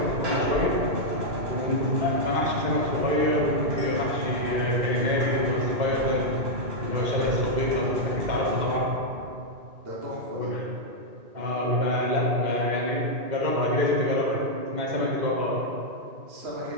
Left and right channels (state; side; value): late; left; 2.1 ms